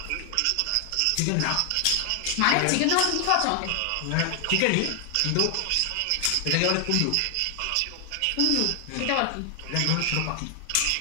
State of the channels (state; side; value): different; both; correlation 0.00